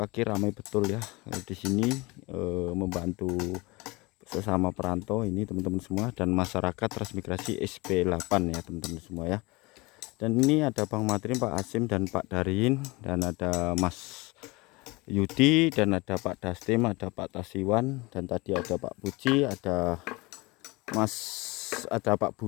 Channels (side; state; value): right; quieter; 24.0 dB